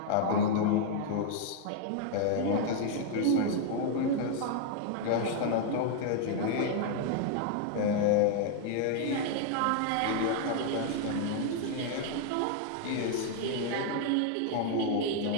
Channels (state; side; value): different; both; correlation 0.00